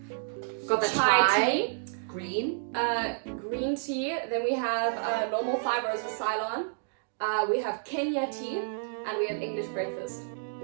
Got the chai tea. Green. Green tea. Then we have normal 5 roses Ceylon. We have Kenya tea. And we have English breakfast.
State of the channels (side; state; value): left; silent; digital silence